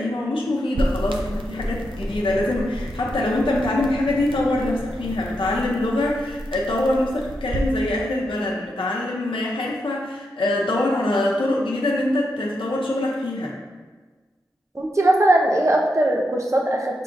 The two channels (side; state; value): both; normal; correlation 0.83